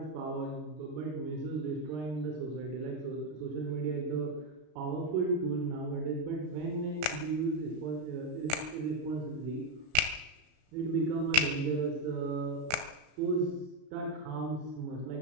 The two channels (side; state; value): left; late; 33 ms